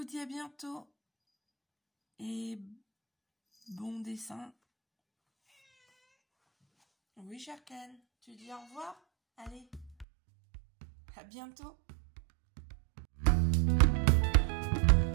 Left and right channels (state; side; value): drops out; left; at 10.1 s